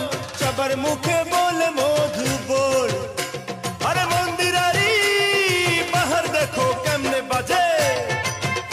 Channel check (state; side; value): identical; both; correlation 1.00